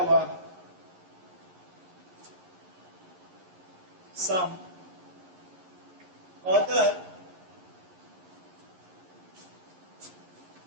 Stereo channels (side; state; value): left; late; 11 ms